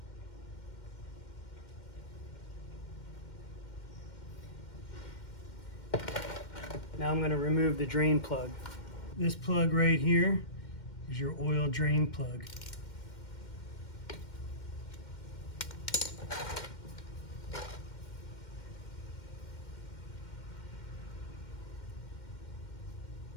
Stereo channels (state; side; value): late; right; 2.1 ms